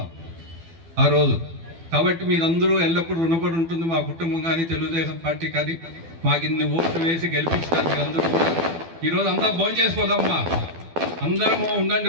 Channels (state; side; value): late; left; 12 ms